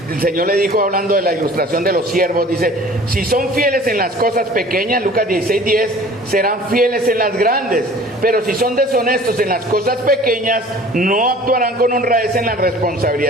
el Señor le dijo, hablando de la ilustración de los siervos, dice, si son fieles en las cosas pequeñas, Lucas 16:10, serán fieles en las grandes, pero si son deshonestos en las cosas pequeñas, no actuarán con honradez en las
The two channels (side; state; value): both; normal; correlation 0.47